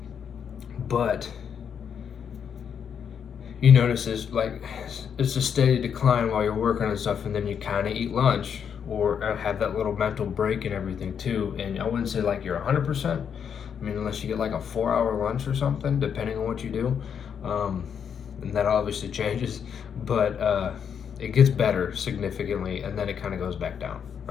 But you notice it's a steady decline while you're working on stuff, and then you kind of eat lunch or have that little mental break and everything too. And I wouldn't say like you're 100%. I mean, unless you get like a 4-hour lunch or something, depending on what you do. And that obviously changes, but it gets better significantly, and then it kind of goes back down,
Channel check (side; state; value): right; quieter; 7.6 dB